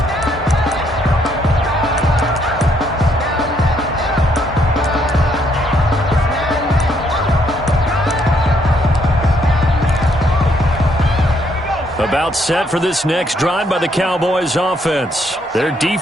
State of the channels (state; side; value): normal; both; correlation 0.71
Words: About set for this next drive by the Cowboys offense. Their